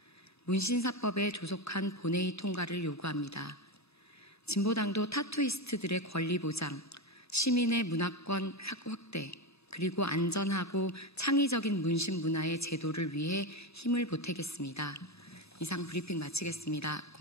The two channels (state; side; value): normal; both; correlation 0.16